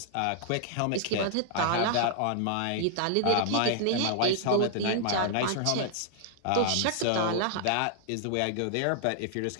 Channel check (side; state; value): both; different; correlation -0.01